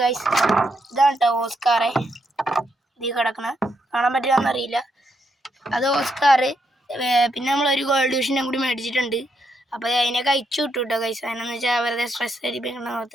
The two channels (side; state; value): both; normal; correlation 0.78